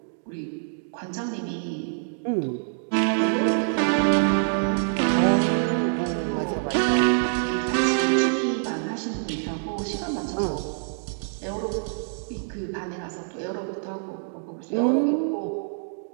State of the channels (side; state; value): left; silent; digital silence